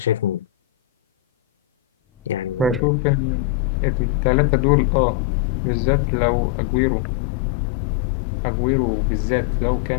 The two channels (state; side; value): drops out; right; at 2.8 s